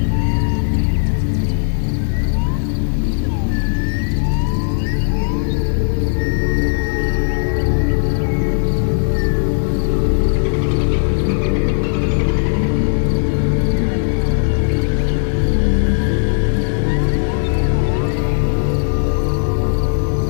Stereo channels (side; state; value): right; silent; 68 dB below the other